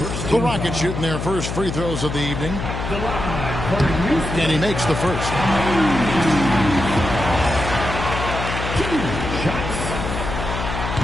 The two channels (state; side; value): noise; left; hum, 5 dB below the sound